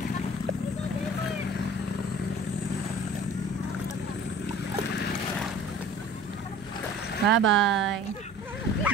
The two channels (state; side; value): normal; both; correlation 0.46